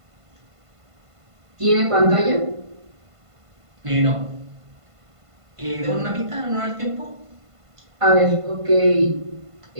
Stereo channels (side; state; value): left; late; 1.5 ms